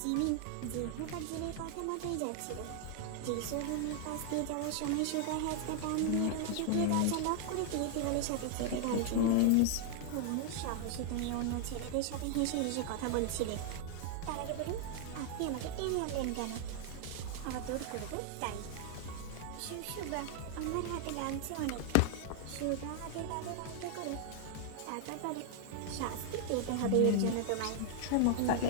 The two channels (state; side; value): different; both; correlation 0.00